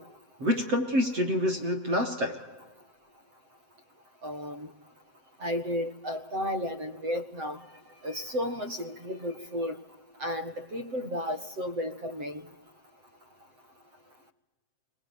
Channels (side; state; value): left; late; 7.7 ms